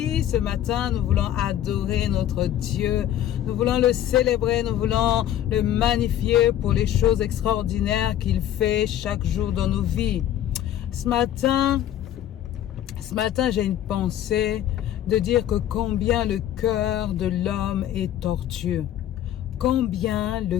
ce matin, nous voulons adorer notre Dieu. Nous voulons le célébrer, nous voulons le magnifier pour les choses extraordinaires qu'il fait chaque jour dans nos vies. Ce matin, j'ai une pensée de dire que combien le cœur de l'homme est tortueux. Combien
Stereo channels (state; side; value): quieter; right; 11.5 dB